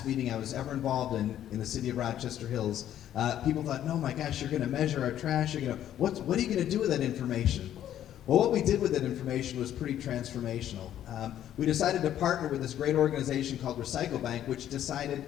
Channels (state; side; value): quieter; right; 11.3 dB